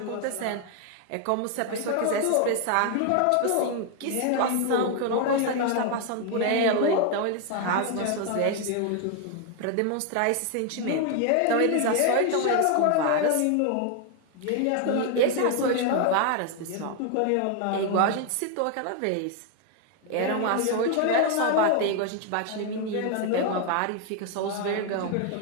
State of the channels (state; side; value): different; both; correlation 0.01